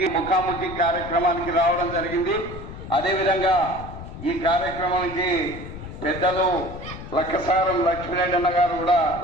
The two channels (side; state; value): left; noise; rumble, 12 dB below the sound